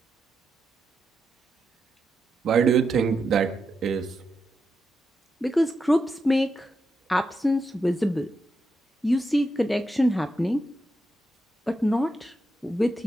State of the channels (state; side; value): normal; both; correlation 0.86